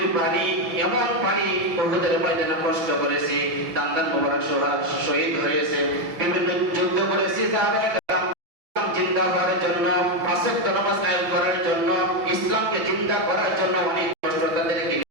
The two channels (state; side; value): late; left; 6.1 ms